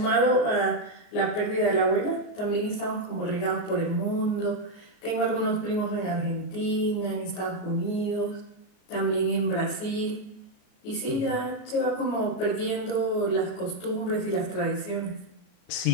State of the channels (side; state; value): right; late; 33 ms